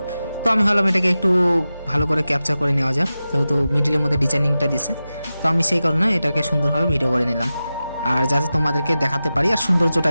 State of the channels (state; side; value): inverted; both; correlation -0.94